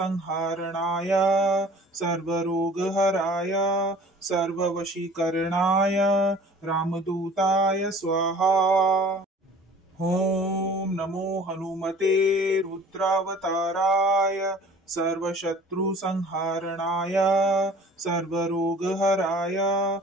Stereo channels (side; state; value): both; normal; correlation 0.48